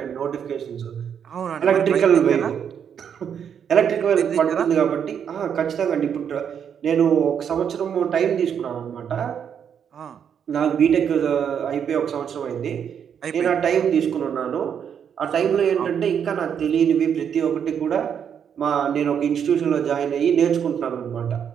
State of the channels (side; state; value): left; quieter; 8.0 dB